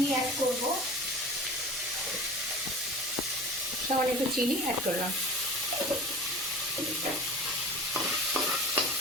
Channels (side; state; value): left; noise; hum, 29 dB below the sound